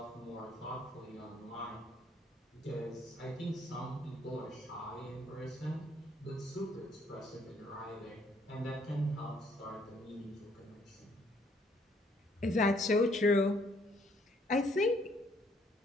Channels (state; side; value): normal; both; correlation 0.66